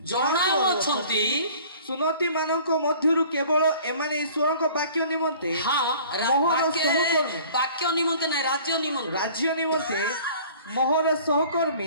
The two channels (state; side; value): inverted; both; correlation -0.49